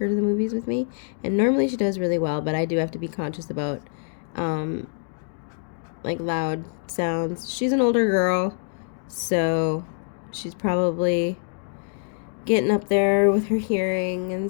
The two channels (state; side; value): silent; right; 56 dB below the other